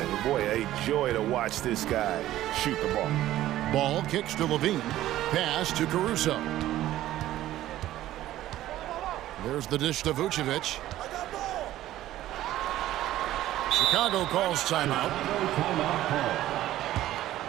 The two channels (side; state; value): left; quieter; 14.1 dB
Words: Boy, a joy to watch this guy shoot the ball. Ball kicks to Levine. Pass to Caruso. There's the dish to Vucevic. Chicago calls timeout.